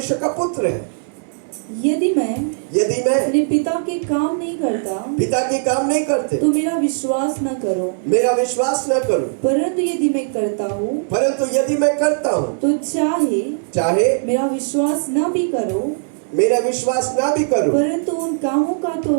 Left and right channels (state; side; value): silent; left; digital silence